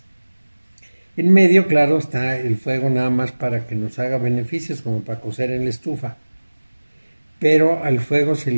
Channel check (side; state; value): both; inverted; correlation -1.00